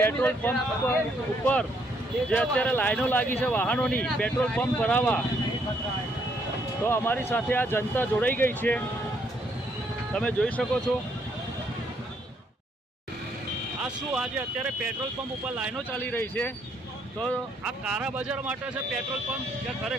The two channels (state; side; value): normal; both; correlation 0.71